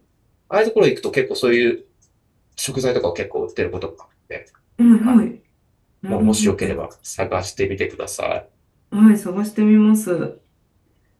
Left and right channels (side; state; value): both; identical; correlation 1.00